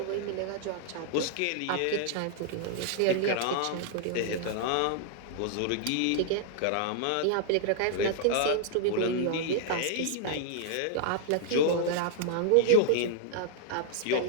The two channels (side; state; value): both; different; correlation 0.00